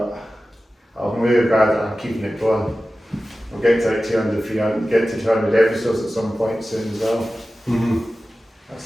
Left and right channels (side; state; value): both; normal; correlation 0.95